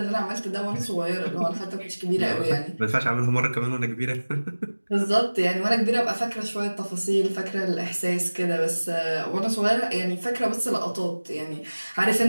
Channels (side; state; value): both; inverted; correlation -1.00